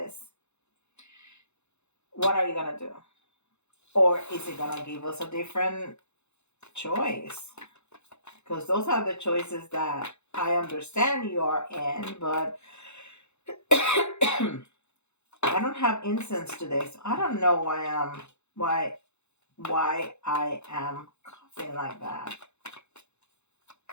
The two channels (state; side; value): late; right; 0.82 ms